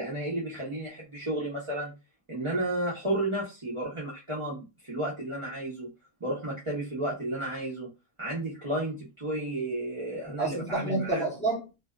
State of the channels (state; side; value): normal; both; correlation -0.13